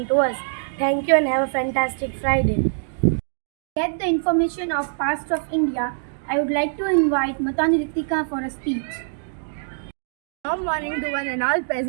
to us. Thank you and have a fantastic Friday. Get the information of past of India. I would like to invite Matani Ritika for a speech. Good morning to one and all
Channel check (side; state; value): left; silent; digital silence